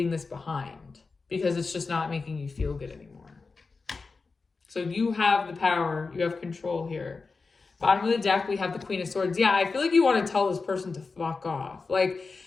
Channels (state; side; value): quieter; right; 4.3 dB